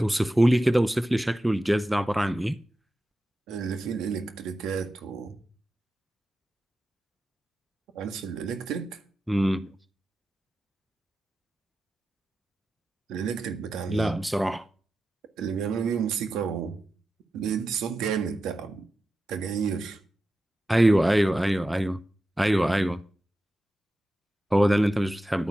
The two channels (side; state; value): both; normal; correlation 0.92